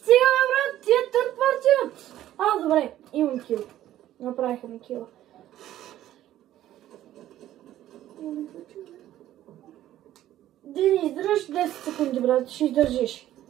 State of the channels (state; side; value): quieter; left; 13.1 dB